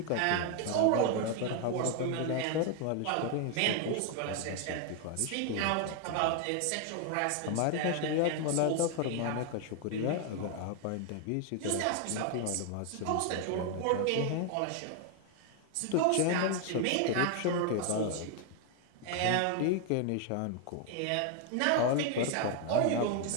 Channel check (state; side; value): different; both; correlation 0.00